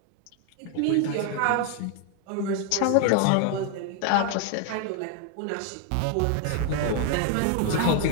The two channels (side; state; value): both; different; correlation 0.01